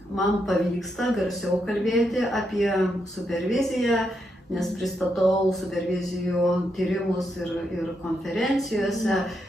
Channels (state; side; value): normal; both; correlation 0.81